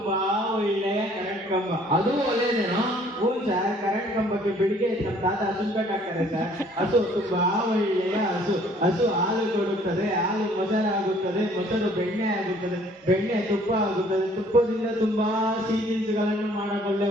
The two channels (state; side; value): normal; both; correlation 0.58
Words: ಒಳ್ಳೆಯ ಕರೆಂಟ್ ಕಂಬ. ಅದು ಒಳ್ಳೆಯದೇನೋ? ಹ್ಞೂ ಸರ್, ಕರೆಂಟ್ ಕಂಬಕ್ಕೆ ಬೆಳಿಗ್ಗೆ ನಮ್ಮ ತಾತ ಹಸು ಕಟ್ಟಾಕ್ತಾರೆ ಸರ್. ಹಸು ತುಂಬಾ ಒಳ್ಳೆಯ ಹಸು. ಹಸು ಹಾಲು ಕೊಡುತ್ತದೆ. ಹಾಲು ಮೊಸರಾಗುತ್ತದೆ. ಮೊಸರು ಬೆಣ್ಣೆ ಆಗುತ್ತದೆ. ಬೆಣ್ಣೆ ತುಪ್ಪ ಆಗುತ್ತದೆ. ತುಪ್ಪದಿಂದ ತುಂಬಾ ಸಿಹಿ ತಿನಿಸುಗಳನ್ನು